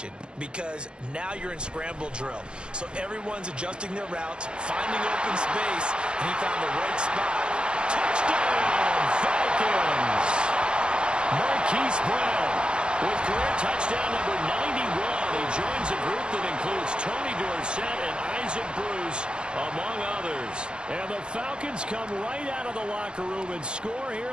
because now you're in scramble drill. So everyone's adjusting their routes, finding open space, and he found the right spot. Touchdown, Falcons! Marquise Brown with career touchdown number 91. He joins a group that includes Tony Dorsett and Isaac Bruce, among others. And the Falcons come right out of the locker room and score here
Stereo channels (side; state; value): left; late; 0.052 ms